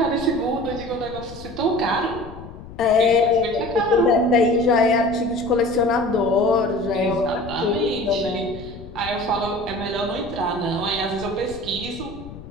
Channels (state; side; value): noise; left; rumble, 15 dB below the sound